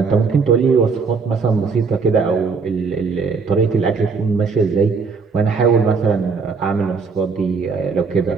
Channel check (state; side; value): quieter; left; 5.0 dB